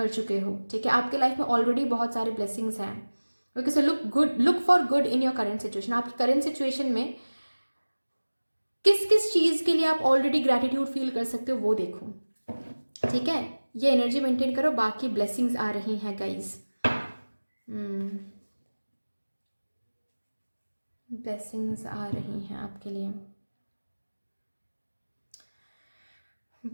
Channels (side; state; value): both; inverted; correlation -1.00